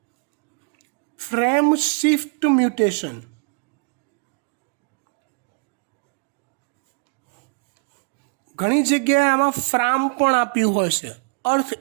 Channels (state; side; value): quieter; left; 38.2 dB